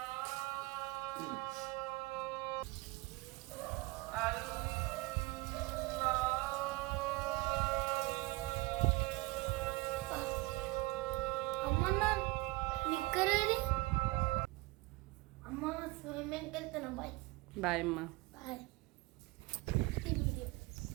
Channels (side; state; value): left; quieter; 22.5 dB